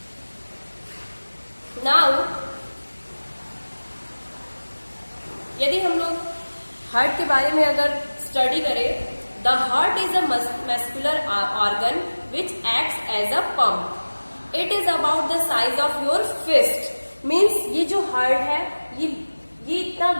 नाउ यदि हम लोग हार्ट के बारे में अगर स्टडी करें, the heart is a muscular organ which acts as a pump. It is about the size of your fist. Means ये जो हार्ट है ये इतना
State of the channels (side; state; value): both; inverted; correlation -1.00